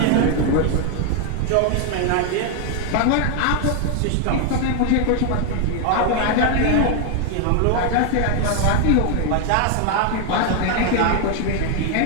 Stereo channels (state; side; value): different; both; correlation 0.00